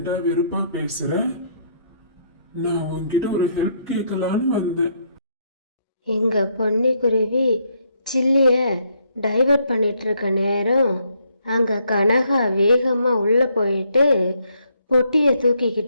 வெறுப்பா பேசுற? நான் உன்கிட்ட ஒரு ஹெல்ப் கேட்கலான்னு வந்தேன். எங்கள் பொன்னிக்குருவி சில்லியை டைவர்ட் பண்ணிட்டு இருக்க நேரம் அங்கே கனகா வேகமாக உள்ளே போயிட்டு பொட்டியை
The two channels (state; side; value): inverted; both; correlation -0.72